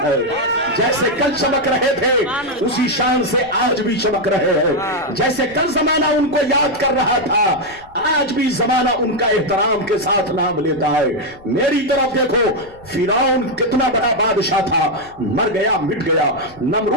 है, जैसे कल चमक रहे थे उसी शान से आज भी चमक रहे हैं, जैसे कल जमाना उनको याद कर रहा था आज भी जमाना उनका एहतराम के साथ नाम लेता है। मेरी तरफ देखो, फिरौन कितना बड़ा बादशाह था, मर गया, मिट गया।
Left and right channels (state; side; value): noise; left; rumble, 24 dB below the sound